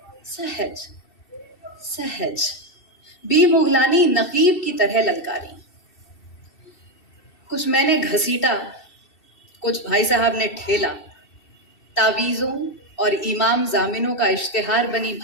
सहज सहज। बी मुगलानी नकीब की तरह ललकारी। कुछ मैंने घसीटा, कुछ भाई साहब ने ठेला। तावीज़ों और इमाम जामिनों का इश्तिहार बनी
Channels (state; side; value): late; right; 2.7 ms